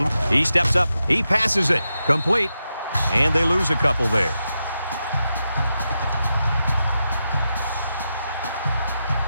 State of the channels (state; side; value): inverted; both; correlation -0.88